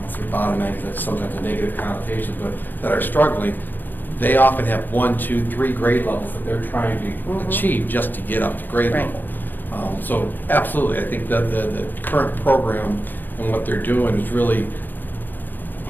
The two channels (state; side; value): late; right; 0.089 ms